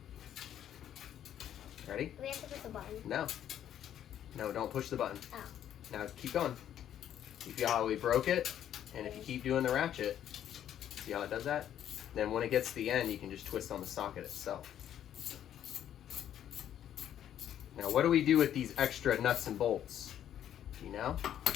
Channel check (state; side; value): quieter; right; 10.5 dB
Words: Ready? Do we have to push the button? No. No, don't push the button. Ow. Now keep going. You feel how we broke it? And if you keep doing the ratchet, see how it does that? Then when it gets to the end, you can just twist on the socket itself. Now what do we do with these extra nuts and bolts? Do you know?